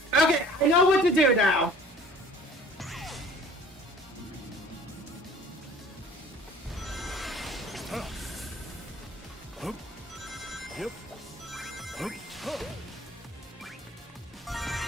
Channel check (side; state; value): both; normal; correlation 0.50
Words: Okay, I know what to do now. Hup. Yep. Hup. Hup.